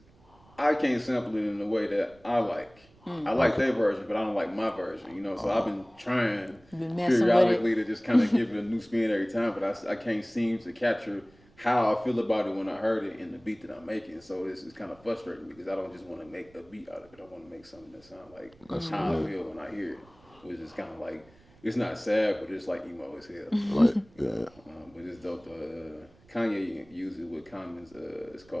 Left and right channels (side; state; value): right; noise; rumble, 28 dB below the sound